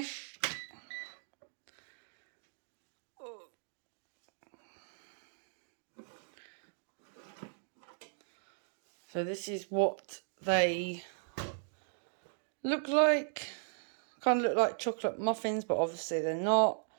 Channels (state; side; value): silent; left; digital silence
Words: So this is what they look like. Kind of look like chocolate muffins, but obviously they're not.